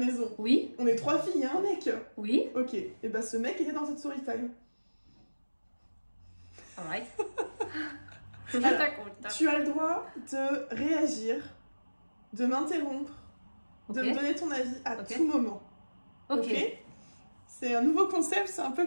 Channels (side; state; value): both; inverted; correlation -1.00